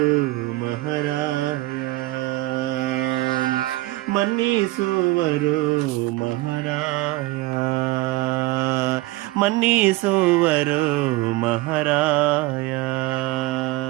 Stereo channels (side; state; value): left; quieter; 19.1 dB